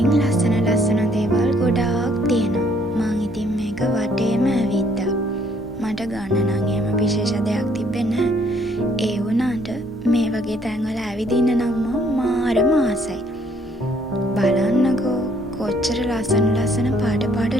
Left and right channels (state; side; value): normal; both; correlation 0.64